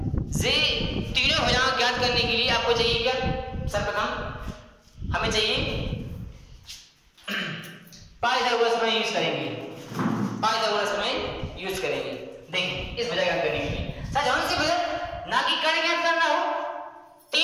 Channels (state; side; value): identical; both; correlation 1.00